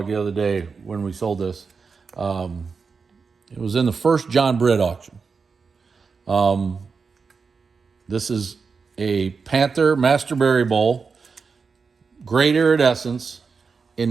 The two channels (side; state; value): left; quieter; 5.1 dB